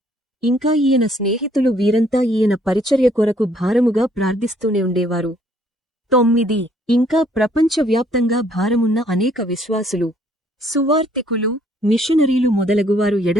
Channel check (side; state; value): both; normal; correlation 0.64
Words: ఇంకా ఈయన స్నేహితులు వీరంతా ఈయన పరిచర్య కొరకు భారముగా ప్రార్థిస్తూనే ఉండేవారు. 9. ఇంకా ప్రపంచవ్యాప్తంగా భారమున్న అనేక విశ్వాసులు, సువార్తికులు, మిషనరీలు మొదలగువారు